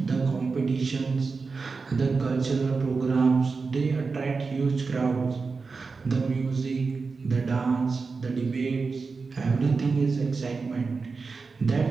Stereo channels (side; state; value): left; quieter; 4.5 dB